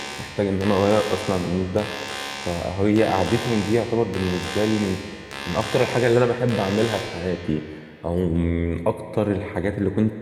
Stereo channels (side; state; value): both; identical; correlation 1.00